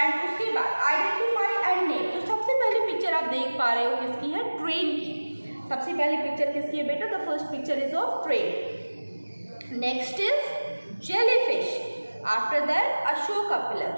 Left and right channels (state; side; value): inverted; both; correlation -1.00